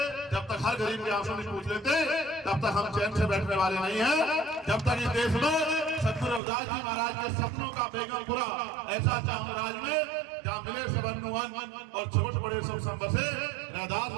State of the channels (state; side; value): drops out; left; at 6.4 s